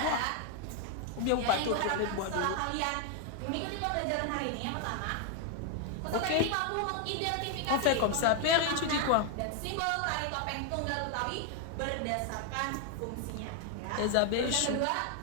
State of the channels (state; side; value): different; both; correlation 0.00